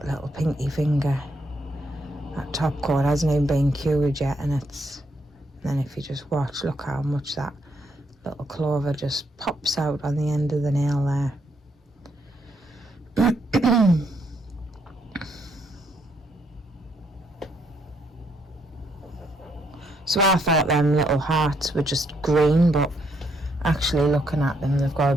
little pinky finger. That top coat hasn't even been cured yet, and then if you just watch, look how much that little clover just pops out on the end of the nail there. So I thought them little hearts were just green, but actually looking at them, they've got a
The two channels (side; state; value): both; normal; correlation 0.74